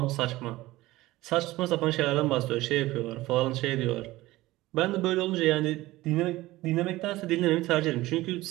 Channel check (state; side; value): quieter; left; 18.1 dB